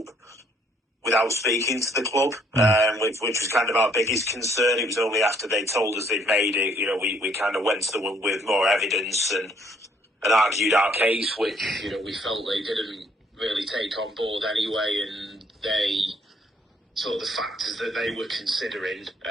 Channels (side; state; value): both; normal; correlation 0.64